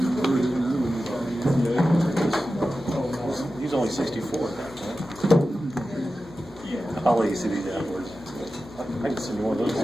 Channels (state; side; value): normal; both; correlation 0.93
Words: He's only 64 at that point. Yeah. I'll let you see these afterwards. I can send you one of those.